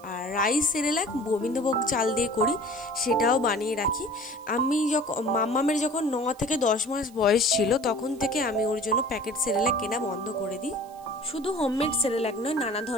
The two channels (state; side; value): noise; right; hiss, 26 dB below the sound